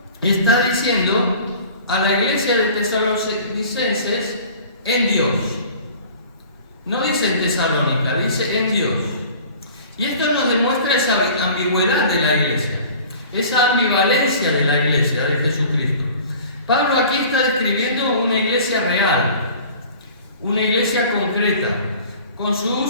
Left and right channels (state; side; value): inverted; both; correlation -0.45